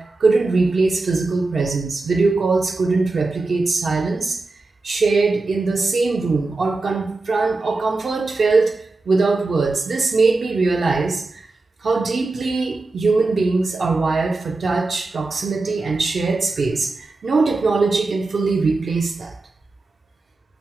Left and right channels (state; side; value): quieter; left; 3.4 dB